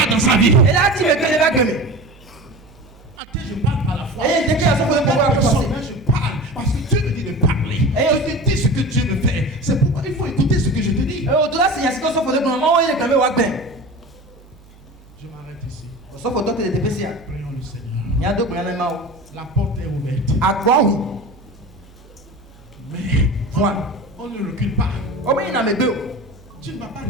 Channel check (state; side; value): normal; both; correlation 0.33